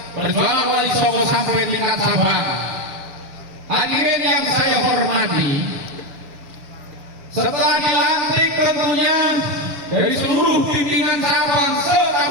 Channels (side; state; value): left; late; 6.9 ms